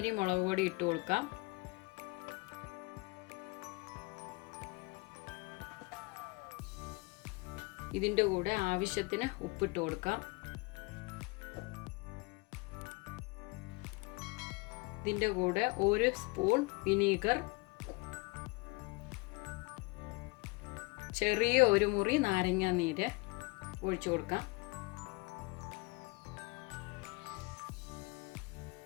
മുളക് പൊടി ഇട്ട് കൊടുക്കാം. ഇതിൻ്റെ കൂടെ ആവശ്യത്തിന് ഉപ്പിട്ട് കൊടുക്കാം. ഇതിൻ്റെ കൂടെ 1 സ്പൂൺ വിനീഗർ, ചെറിയ ഒരു മുറി നാരങ്ങ നീര് ഒഴിച്ചു കൊടുക്കാം.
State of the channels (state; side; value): quieter; right; 26.9 dB